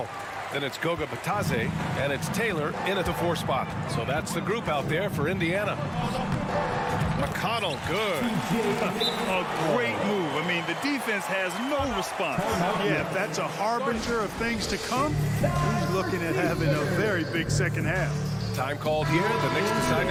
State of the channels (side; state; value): both; identical; correlation 1.00